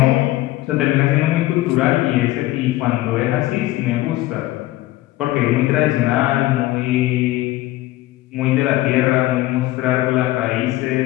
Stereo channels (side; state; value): right; quieter; 17.0 dB